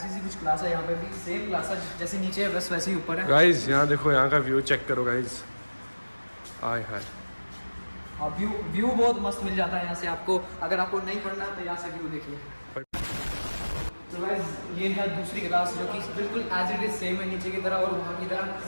सी कुछ क्लास है यहाँ पे भी, सेम क्लास है जैसे नीचे है बस वैसे ही ऊपर है। गाइस यहाँ देखो, यहाँ का व्यू चेक करो गाइस, आय हाय। और व्यू बहुत मस्त मिल जाता है यहाँ से आपको। अगर आपको नहीं पढ़ना तो यहाँ से व्यू देखिए। तो गाइस ये है दूसरी क्लास जो कि बिल्कुल एज इट इज सेम है नीचे की तरह और वहाँ की तरह।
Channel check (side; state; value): both; inverted; correlation -1.00